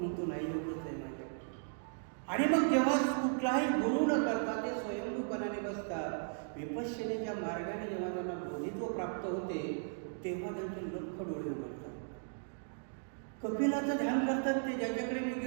नाही, एवढंच आहे माझ्याकडे. आणि मग जेव्हा कुठलाही गुरु न करता ते स्वयंभूपणाने बसतात, विपश्यनेच्या मार्गाने जेव्हा त्यांना बोधित्व प्राप्त होते तेव्हा त्यांचे लख डोळे उघडतात. कपिलाचं ध्यान करतात ते, ज्याच्याकडे मी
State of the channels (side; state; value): left; silent; digital silence